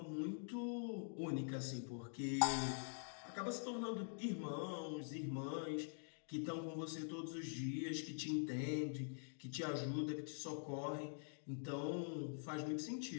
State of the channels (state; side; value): silent; right; digital silence